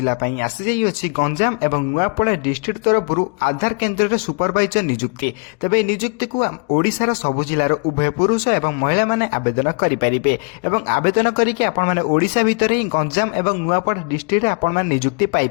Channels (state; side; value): quieter; right; 35.3 dB